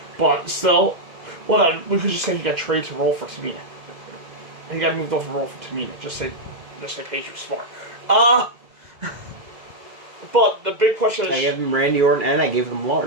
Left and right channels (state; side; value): late; left; 2.0 ms